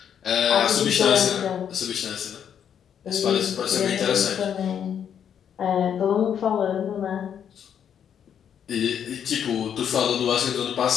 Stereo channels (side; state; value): right; quieter; 8.6 dB